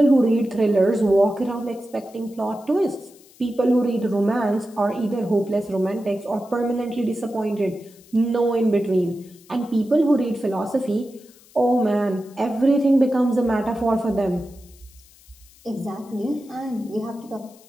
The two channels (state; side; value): noise; left; hiss, 26 dB below the sound